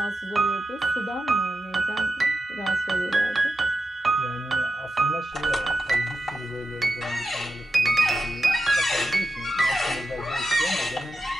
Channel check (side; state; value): both; normal; correlation 0.91